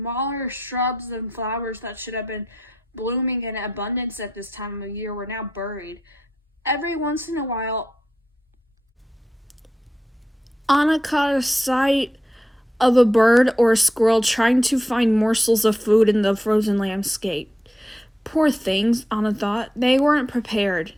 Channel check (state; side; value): normal; both; correlation 0.85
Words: shrubs and flowers that should have been blooming in abundance at this time of year were now buried. Every once in a while, Anna caught a sight of a bird or a squirrel trying to find morsels of food in the frozen landscape. Poor things, Anna thought. They weren't prepared.